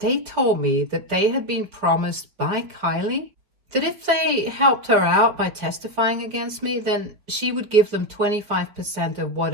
told me that they had been promised by Kylie that if they helped her out by testifying against me, then she would give them 25% of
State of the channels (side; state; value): left; late; 5.1 ms